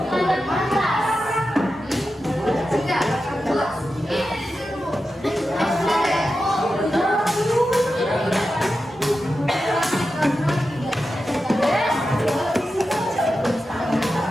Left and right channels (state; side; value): normal; both; correlation 0.91